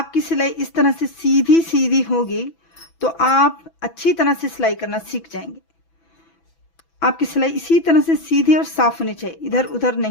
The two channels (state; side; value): late; right; 6.0 ms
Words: सिलाई इस तरह से सीधी सीधी होगी तो आप अच्छी तरह से सिलाई करना सीख जाएंगे। आपकी सिलाई इसी तरह से सीधी और साफ होनी चाहिए, इधर उधर